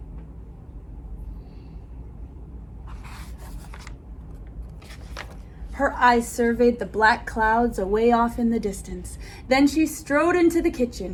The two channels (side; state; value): both; identical; correlation 1.00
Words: Her eyes surveyed the black clouds away off in the distance. Then she strode into the